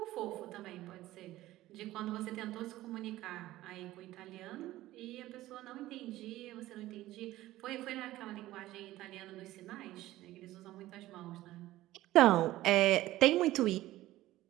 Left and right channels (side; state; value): left; quieter; 16.0 dB